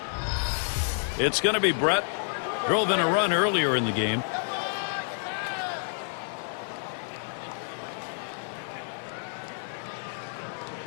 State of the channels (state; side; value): silent; right; 59 dB below the other